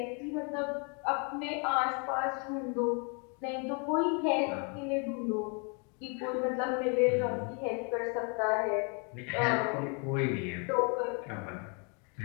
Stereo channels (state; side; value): quieter; right; 35.6 dB